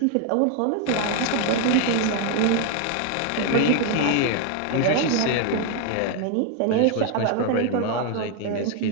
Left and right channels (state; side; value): different; both; correlation 0.01